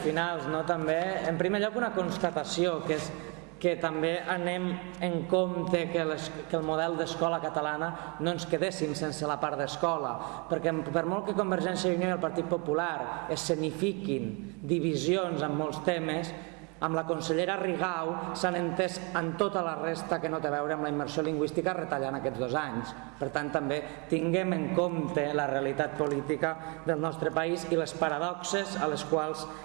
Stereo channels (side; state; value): left; quieter; 31.8 dB